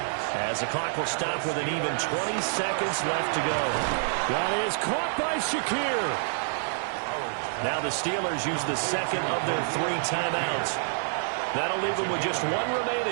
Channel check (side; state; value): left; silent; 60 dB below the other